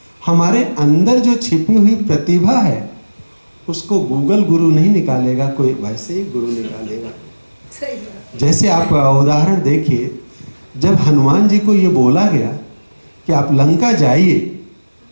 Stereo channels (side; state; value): both; inverted; correlation -1.00